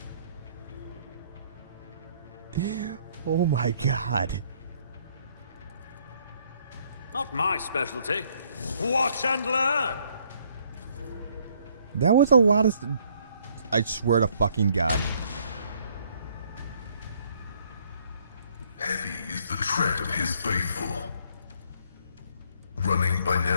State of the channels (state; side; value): inverted; both; correlation -0.65